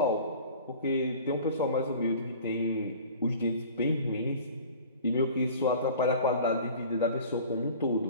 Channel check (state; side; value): inverted; both; correlation -0.43